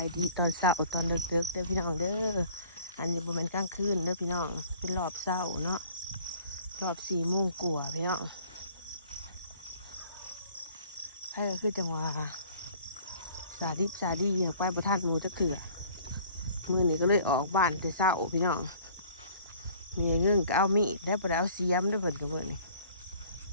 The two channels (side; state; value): both; inverted; correlation -0.51